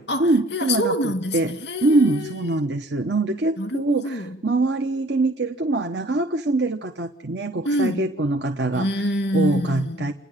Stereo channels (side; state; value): both; normal; correlation 0.54